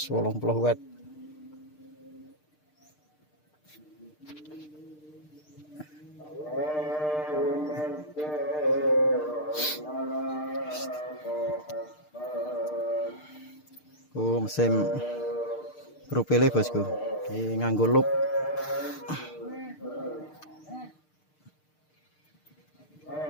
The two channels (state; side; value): late; right; 6.6 ms